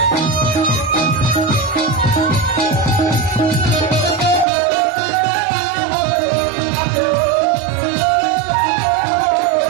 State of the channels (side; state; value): left; drops out; at 4.5 s